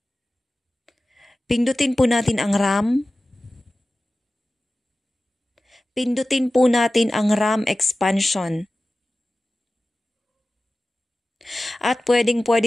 Pindutin po natin ang RAM. Pindutin po natin ang RAM expansion. At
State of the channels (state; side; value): normal; both; correlation 0.96